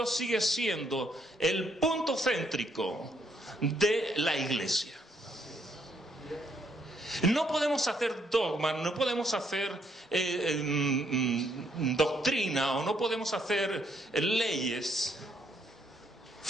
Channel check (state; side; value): normal; both; correlation 0.71